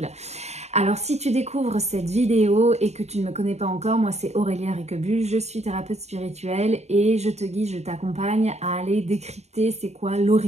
Alors si tu découvres cette vidéo et que tu ne me connais pas encore, moi c'est Aurélia Riquebus, je suis thérapeute spirituelle et je te guide, je t'accompagne à aller décrypter c'est quoi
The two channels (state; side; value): late; left; 0.32 ms